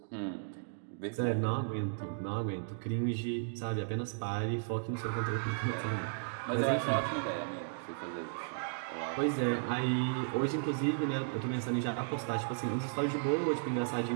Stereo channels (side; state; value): left; silent; digital silence